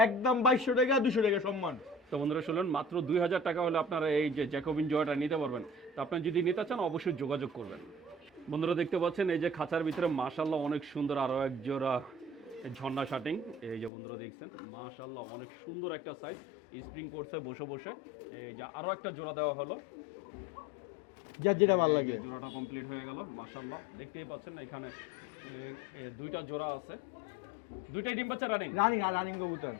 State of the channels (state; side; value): drops out; right; at 13.9 s